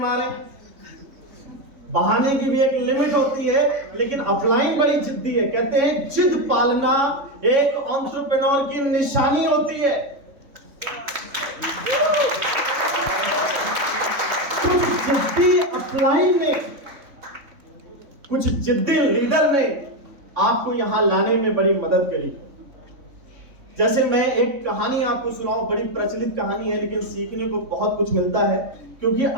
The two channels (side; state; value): left; late; 3.6 ms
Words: बहाने की भी एक लिमिट होती है, लेकिन अपलाइन बड़ी जिद्दी है। कहते हैं जिद पालना एक एंटरप्रेन्योर की निशानी होती है। जिद्दी अपलाइन ने, कुछ जिद्दी लीडर ने आपको यहां लाने में बड़ी मदद करी। जैसे मैं एक कहानी आपको सुनाऊं, बड़ी प्रचलित कहानी है लेकिन सीखने को बहुत कुछ मिलता है। क्योंकि